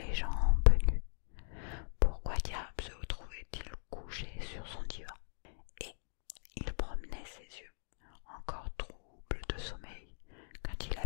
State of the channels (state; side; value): silent; right; digital silence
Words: jambes nues. Pourquoi diable se trouvait-il couché sur son divan? Et il promenait ses yeux, encore troubles de sommeil, quand il